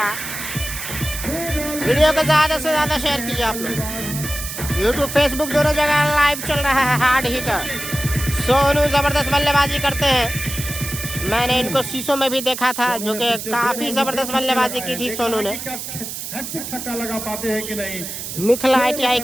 वीडियो को ज्यादा से ज्यादा शेयर कीजिए आप लोग, यूट्यूब फेसबुक दोनों जगह लाइव चल रहा है। हार्ड हिटर सोनू जबरदस्त बल्लेबाजी करते हैं, मैंने इनको शीशों में भी देखा था, जो कि काफी जबरदस्त बल्लेबाजी की थी सोनू ने। छक्का लगा पाते हैं कि नहीं। मिथिला ITI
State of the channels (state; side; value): noise; right; hiss, 7 dB below the sound